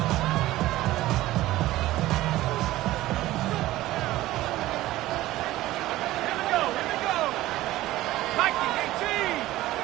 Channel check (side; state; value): left; quieter; 16.3 dB